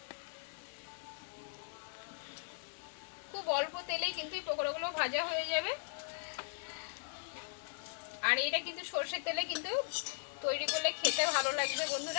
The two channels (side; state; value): right; silent; digital silence